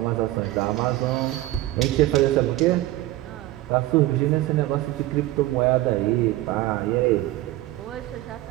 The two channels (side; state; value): left; quieter; 16.7 dB